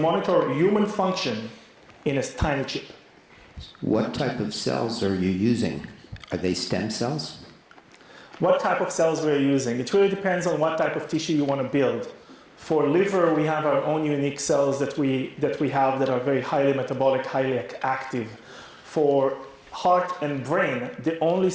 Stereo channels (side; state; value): both; identical; correlation 1.00